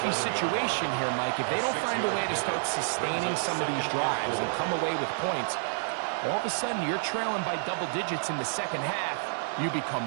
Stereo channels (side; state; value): left; silent; digital silence